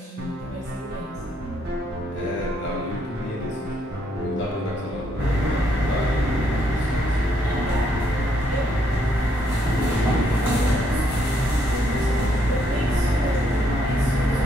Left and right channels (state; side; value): normal; both; correlation 0.73